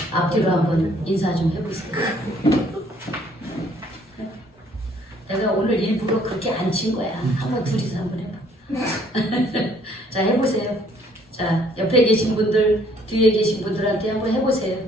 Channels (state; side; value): normal; both; correlation 0.62